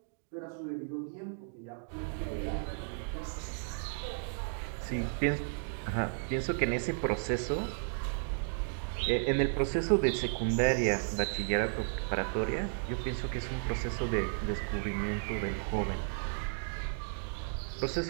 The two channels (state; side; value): silent; left; digital silence